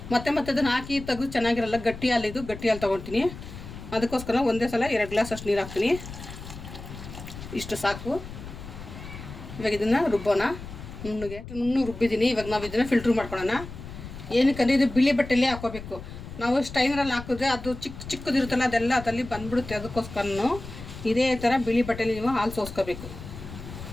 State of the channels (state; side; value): noise; left; rumble, 12 dB below the sound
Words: ಮತ್ತೆ ಅದನ್ನು ಹಾಕಿ ತೆಗೆದು ಚೆನ್ನಾಗಿರಲ್ಲ, ಗಟ್ಟಿ ಹಾಲು ತೊಗೊಳ್ತೀನಿ. ಅದಕ್ಕೋಸ್ಕರ ಒಂದೇ ಸಲ 2 ಗ್ಲಾಸ್ ಅಷ್ಟು ನೀರು ಹಾಕ್ತೀನಿ. ಇಷ್ಟು ಸಾಕು. ಇವಾಗ ಇದನ್ನು ರುಬ್ಬೋಣ. ನುಣ್ಣಗೆ ರುಬ್ಬಿದ್ದೀನಿ. ಇವಾಗ ನಾವು ಇದನ್ನು ಫಿಲ್ಟ್ರ್ ಮಾಡ್ಕೊಳ್ಳೋಣ. ಏನಕ್ಕಂದರೆ ಇದು ಬಿಳಿ ಬಟ್ಟೆಯಲ್ಲೇ ಹಾಕೋಬೇಕು. ನಾವು ಸ್ಟೈನರಲ್ಲಿ ಹಾಕಿದ್ರೆ ಅದು ಚಿಕ್ಕದಿರುತ್ತಲ್ಲ ಅದೆಲ್ಲ ಅದಲ್ಲಿ ಬಂದ್ಬಿಡುತ್ತೆ. ಅದಕ್ಕೋಸ್ಕರನು ಇದೇ ಥರ ಬಿಳಿ ಬಟ್ಟೆಯಲ್ಲಿ ನೀವು ಹಾಲು ಸೋಸ್ಕೋಬೇಕು.